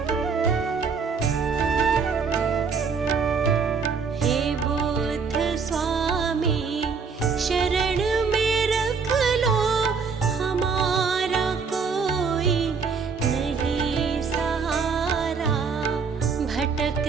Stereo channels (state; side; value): quieter; left; 5.4 dB